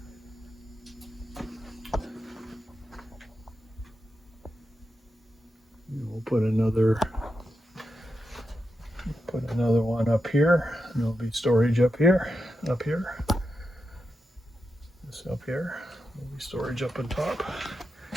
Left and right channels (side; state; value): both; normal; correlation 0.87